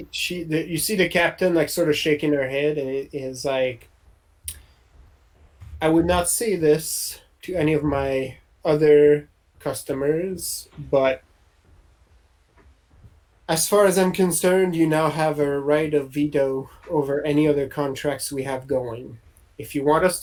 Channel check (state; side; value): identical; both; correlation 1.00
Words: see the captain like sort of shaking her head, and it is like, I would not say this to any of my other customers, but as far as I'm concerned, you now have a right of veto over any other contracts we have going. If you want us